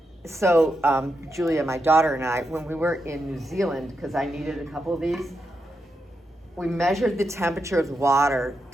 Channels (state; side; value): normal; both; correlation 0.85